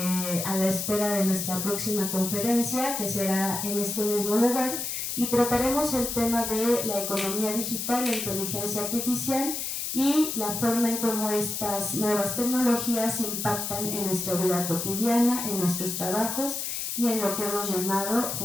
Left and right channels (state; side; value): noise; left; hiss, 3 dB below the sound